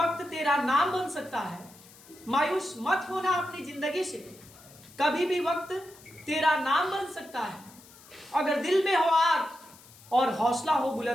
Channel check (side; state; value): left; noise; hiss, 23 dB below the sound